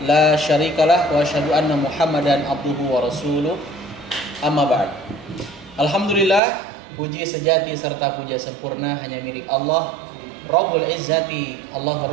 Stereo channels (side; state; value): left; drops out; at 6.4 s